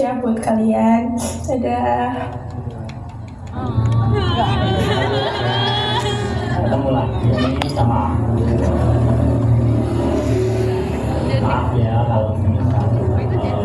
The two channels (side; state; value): both; identical; correlation 1.00